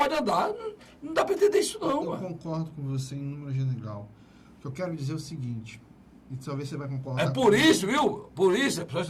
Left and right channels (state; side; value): identical; both; correlation 1.00